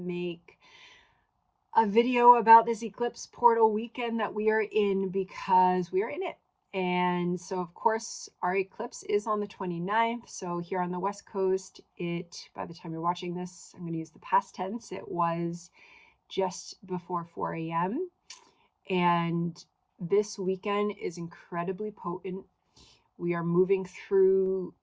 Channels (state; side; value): identical; both; correlation 1.00